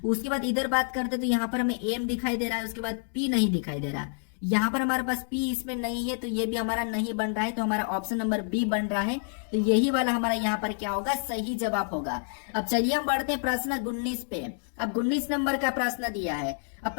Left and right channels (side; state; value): right; silent; 59 dB below the other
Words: उसके बाद इधर बात करते तो यहाँ पर हमें एम दिखाई दे रहा है, उसके बाद पी नहीं दिखाई दे रहा। यहाँ पर हमारे पास पी इसमें नहीं है, तो ये भी हमारा नहीं बन रहा है, तो हमारा ऑप्शन नंबर बी बन रहा है। तो यही वाला हमारा यहाँ पर क्या होगा, सही जवाब होगा। अब चलिए हम बढ़ते हैं प्रश्न 19 पे। अब 19 नंबर का प्रश्न दिया है। अब